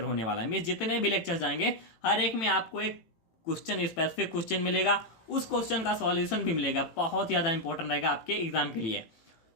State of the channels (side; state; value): right; late; 18 ms